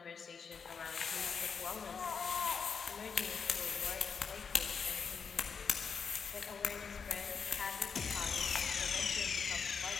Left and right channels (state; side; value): quieter; right; 6.0 dB